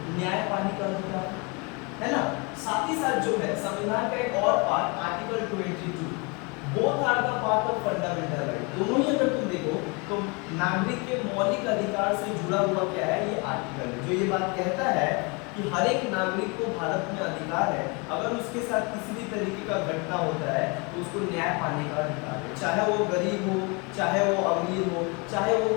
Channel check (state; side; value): quieter; right; 30.4 dB